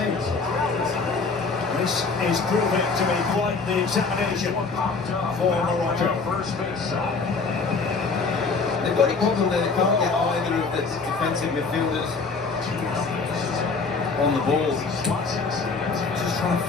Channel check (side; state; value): right; quieter; 4.4 dB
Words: This is proving to be quite the examination for Morocco. They've got a problem that they can't get either of the defensive midfielders on the ball. Just trying to